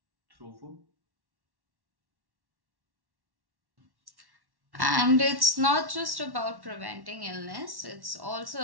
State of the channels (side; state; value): left; late; 1.1 ms